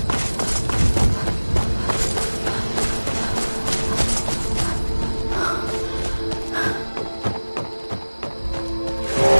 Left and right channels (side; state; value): both; inverted; correlation -1.00